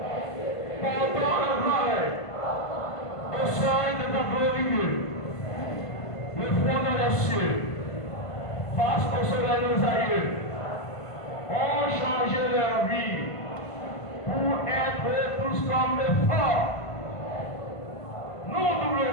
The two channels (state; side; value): late; right; 1.5 ms